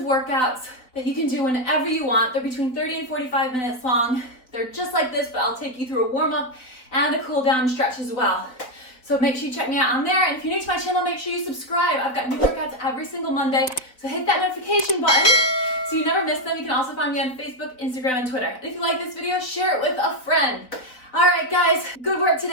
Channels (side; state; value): right; late; 3.9 ms